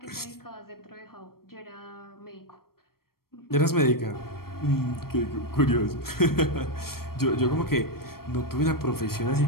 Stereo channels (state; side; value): late; right; 0.94 ms